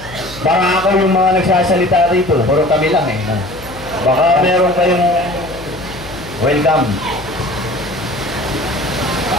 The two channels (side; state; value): left; noise; hum, 17 dB below the sound